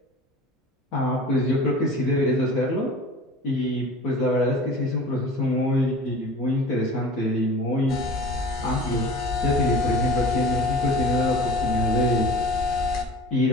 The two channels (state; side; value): normal; both; correlation 0.40